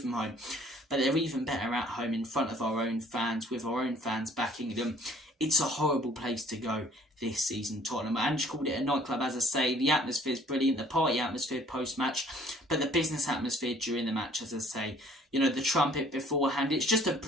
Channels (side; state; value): both; normal; correlation 0.57